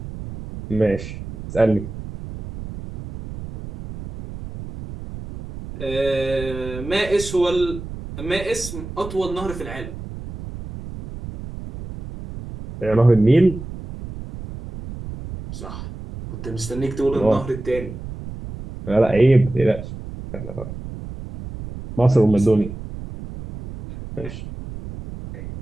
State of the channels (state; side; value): noise; right; rumble, 11 dB below the sound